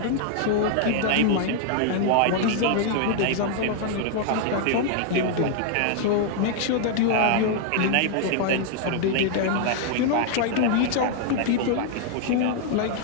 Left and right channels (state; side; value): different; both; correlation 0.00